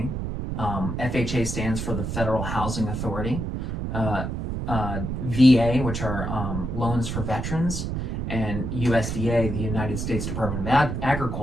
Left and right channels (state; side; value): noise; right; rumble, 3 dB below the sound